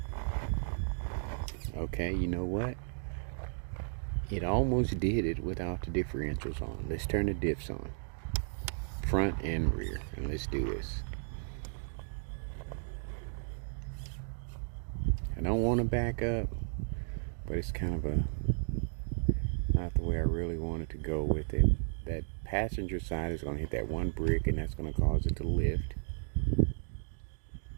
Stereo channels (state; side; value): silent; left; digital silence